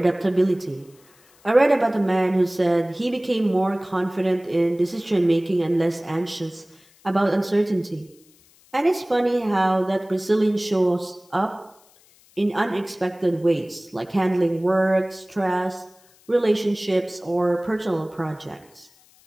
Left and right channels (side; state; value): left; noise; hiss, 30 dB below the sound